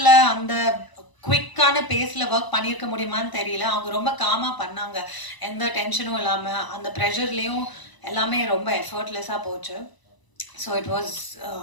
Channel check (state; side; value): late; right; 1.0 ms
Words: அந்த குவிக்கான பேஸில் work பண்ணியிருக்க முடியுமான்னு தெரியல. அவங்க ரொம்ப காமாக பண்ணாங்க, எந்த டென்ஷனும் இல்லாமல். அந்த ப்ரெஷர்லேயும் எல்லாமே ரொம்ப எஃபர்ட்லெஸ்ஸாக போச்சு. So it was